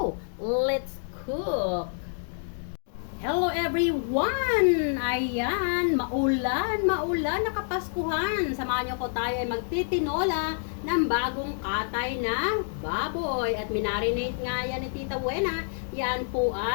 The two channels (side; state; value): right; silent; digital silence